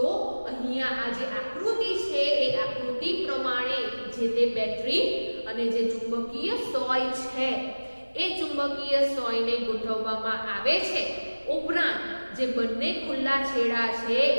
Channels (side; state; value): both; inverted; correlation -1.00